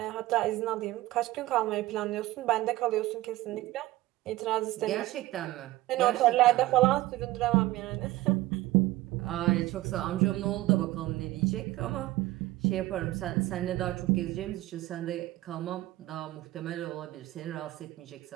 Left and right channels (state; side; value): quieter; left; 17.3 dB